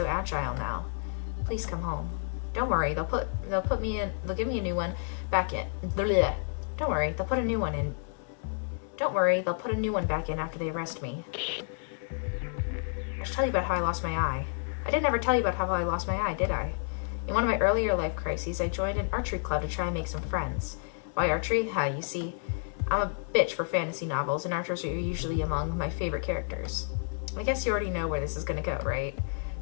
agile now. Please come home. Don't worry, they'll give me a new one back in. Bleh. Don't worry, they'll put a new one in. Don't worry, they'll put a new one back in after they arrest me. I should tell you about how I lost my eye. I didn't ever tell you about how I lost my eye, did I? In one of my earlier life crises, I joined an archery club to try and make some friends. Why archery? You see, I'm a bitch for fantasy novels, and archers are usually among my favorite characters. I guess you already know where this is going to go, right?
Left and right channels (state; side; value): silent; right; 58 dB below the other